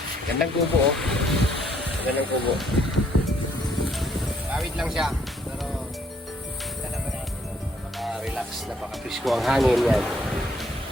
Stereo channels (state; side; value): normal; both; correlation 0.67